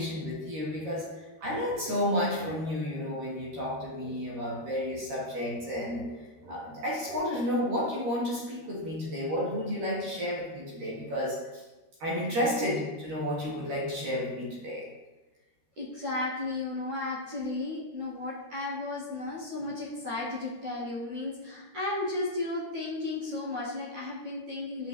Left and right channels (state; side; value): late; left; 13 ms